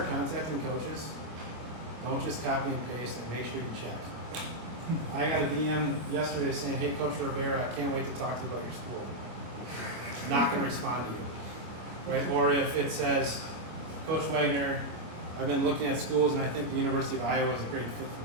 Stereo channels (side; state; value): left; late; 25 ms